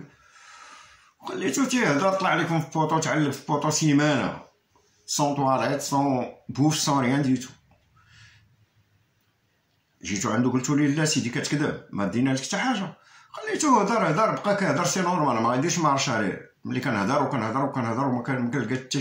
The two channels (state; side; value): identical; both; correlation 1.00